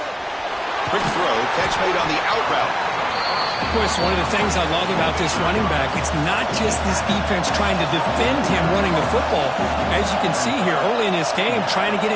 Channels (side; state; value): both; identical; correlation 1.00